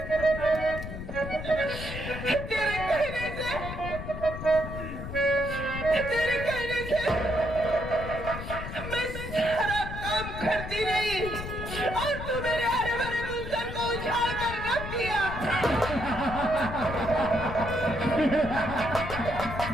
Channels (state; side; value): noise; left; rumble, 8 dB below the sound